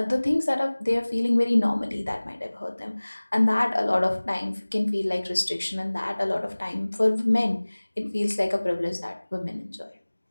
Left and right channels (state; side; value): inverted; both; correlation -1.00